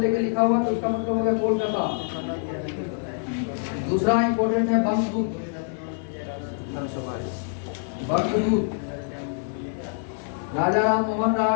लिखा हुआ तो उसका मतलब हो गया कोलकाता। दूसरा इंपॉर्टेंट है बंगदूत। Bangadoot Raja Ram Mohan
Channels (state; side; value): silent; right; digital silence